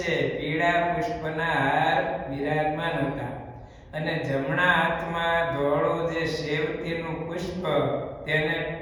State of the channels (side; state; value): both; identical; correlation 1.00